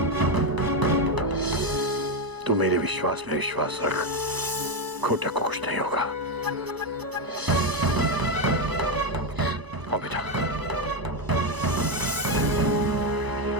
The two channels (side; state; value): left; late; 1.0 ms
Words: तू मेरे विश्वास में विश्वास रख, घोटक को कुछ नहीं होगा। आओ बेटा।